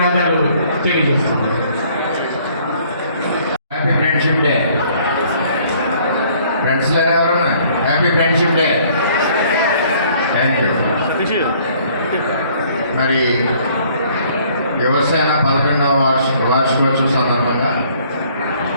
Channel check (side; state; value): both; inverted; correlation -0.60